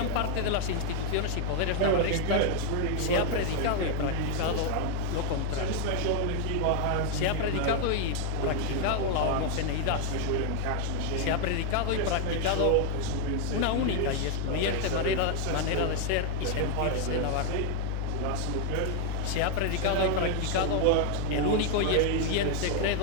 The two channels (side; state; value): both; different; correlation 0.00